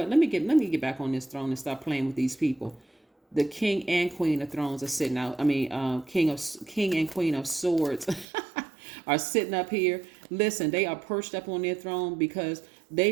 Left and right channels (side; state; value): left; drops out; at 8.2 s